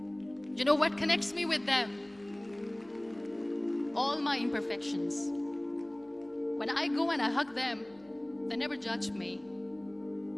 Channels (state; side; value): noise; left; hum, 30 dB below the sound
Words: You know what connects me with them? All my imperfections. When I go and I hug them, they never judge me.